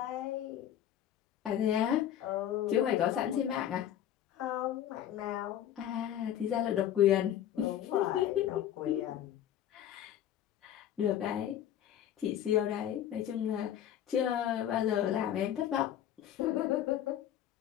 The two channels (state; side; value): quieter; right; 10.9 dB